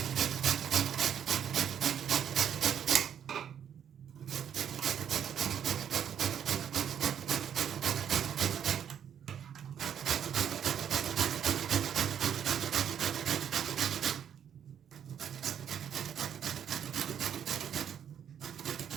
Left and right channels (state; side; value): quieter; left; 8.9 dB